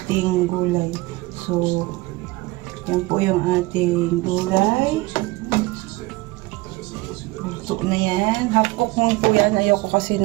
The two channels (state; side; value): quieter; left; 21.1 dB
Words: gulay. So, yan po yung ating gulay. Luto na yan. Half cook mo po yan. Ayoko kasi